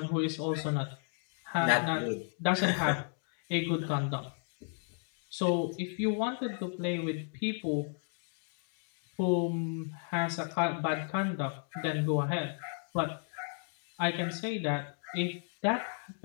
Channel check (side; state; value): right; silent; 55 dB below the other